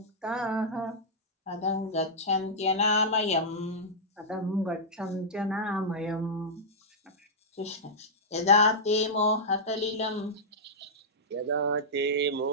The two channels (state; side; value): normal; both; correlation -0.10